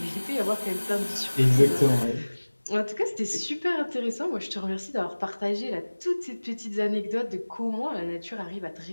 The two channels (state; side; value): inverted; both; correlation -1.00